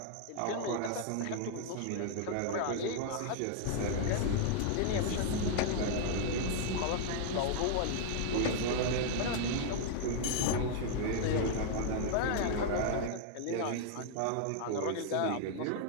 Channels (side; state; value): both; different; correlation 0.00